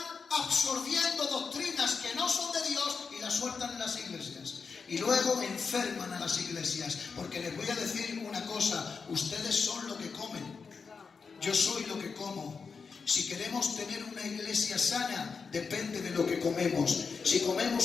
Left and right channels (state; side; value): quieter; right; 5.3 dB